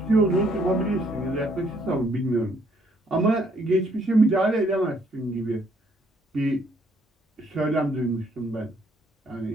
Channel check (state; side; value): normal; both; correlation 0.67